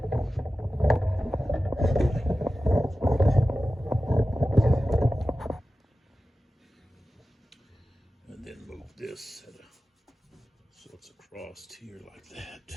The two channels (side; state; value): both; normal; correlation 0.94